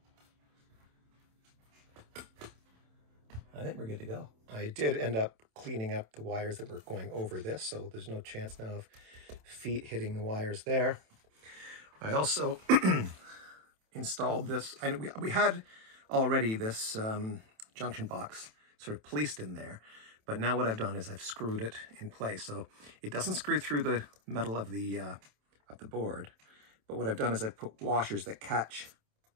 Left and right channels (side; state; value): left; late; 27 ms